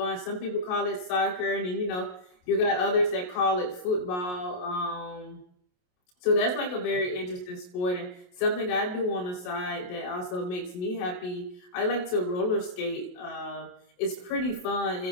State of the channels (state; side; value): late; right; 28 ms